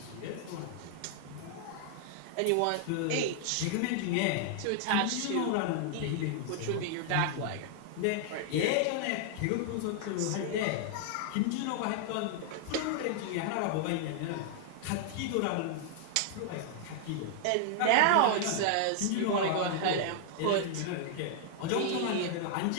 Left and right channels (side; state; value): both; different; correlation 0.00